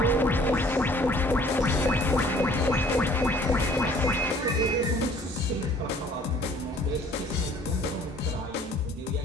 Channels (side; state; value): both; normal; correlation 0.55